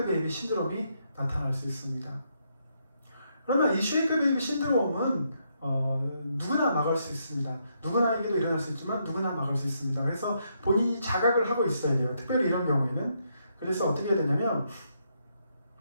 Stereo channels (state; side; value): inverted; both; correlation -0.77